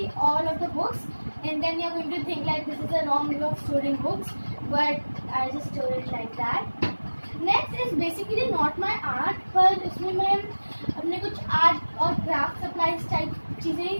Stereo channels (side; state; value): both; inverted; correlation -1.00